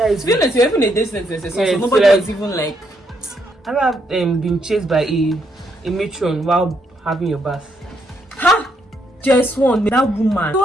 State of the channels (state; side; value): normal; both; correlation 0.75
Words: is. To be honest, you're even a distance. Yeah, so nobody so was even like. I have been chased by a matron while having your bath. Ha! Just one, that woman. It